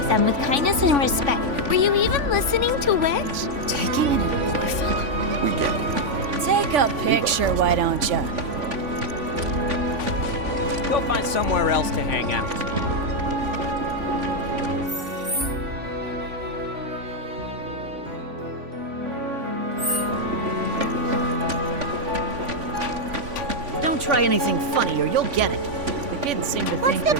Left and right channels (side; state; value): left; late; 3.5 ms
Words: them with kindness and respect. Were you even listening to Wedge? Taking an orphan. We get it. Take a picture, why don't you? Go find somewhere else to hang out. Don't try anything funny or you'll get it. The kids seem to What's think the they're